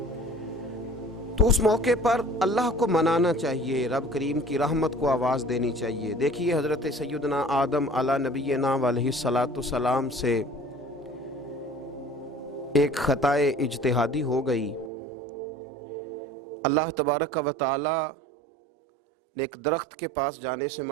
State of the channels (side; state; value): left; drops out; at 14.9 s